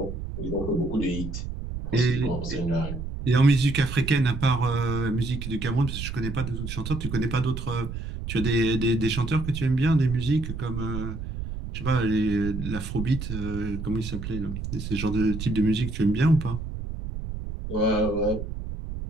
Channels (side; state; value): right; noise; rumble, 7 dB below the sound